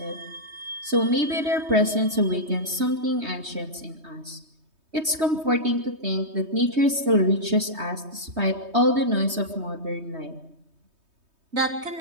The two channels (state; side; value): late; left; 3.2 ms